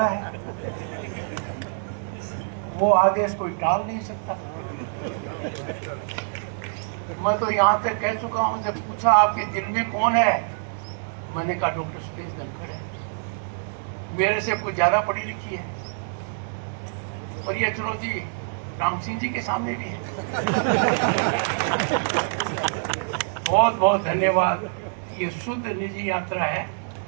है, वो आदेश कोई टाल नहीं सकता। मैं तो यहाँ तक कह चुका हूँ, जब पूछा आपके दिल में कौन है, मैंने कहा डॉक्टर सुरेश धनखड़ है। मेरे से कोई ज्यादा पढ़ी लिखी है, और ये चुनौती राम सिंह जी के सामने भी है। बहुत बहुत धन्यवाद। ये शुद्ध निजी यात्रा है,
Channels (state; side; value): silent; left; digital silence